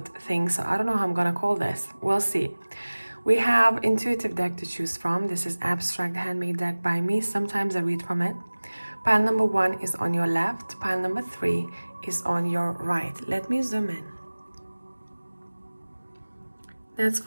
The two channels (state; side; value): inverted; both; correlation -1.00